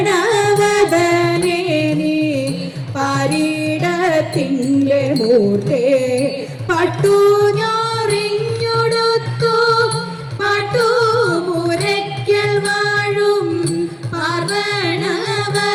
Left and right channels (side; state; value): both; identical; correlation 1.00